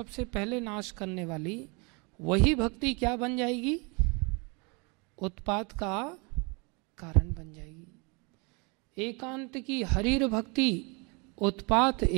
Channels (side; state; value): left; quieter; 30.9 dB